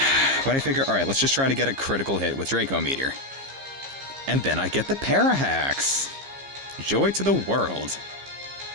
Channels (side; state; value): left; late; 15 ms